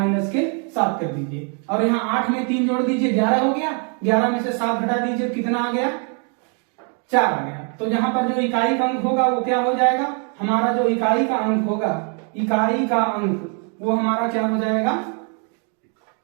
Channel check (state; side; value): quieter; left; 40.0 dB